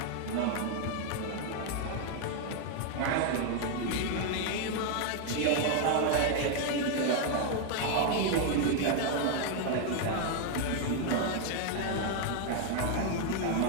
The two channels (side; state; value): both; different; correlation 0.00